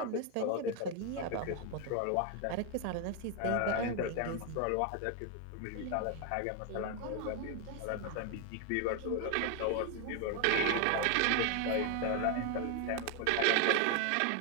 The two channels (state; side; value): different; both; correlation 0.01